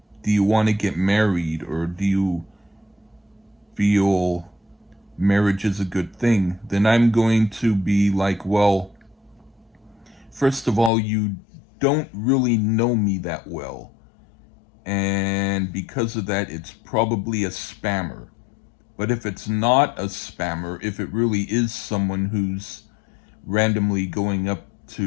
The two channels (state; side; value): drops out; right; at 10.9 s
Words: "Do you want to get married, or do you feel marriage is a good thing?" Then I'm going to be like, "Well, first of all, you don't really know me that well. And because of that, it's probably a spammer. But if it's not a spammer, if it really is someone who's randomly going up